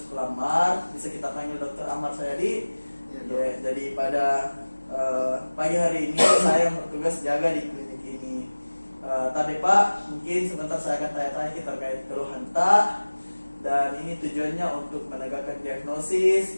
Amar, bisa kita panggil Dr. Amar Sayadi. Ya, jadi pada pagi hari ini saya bertugas jaga di klinik ini. Tadi Pak, mungkin sebentar saya akan tanya-tanya terkait keluhan tak, dan ini tujuannya untuk menegakkan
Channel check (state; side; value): inverted; both; correlation -1.00